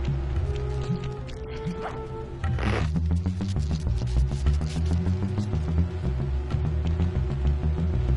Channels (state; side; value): identical; both; correlation 1.00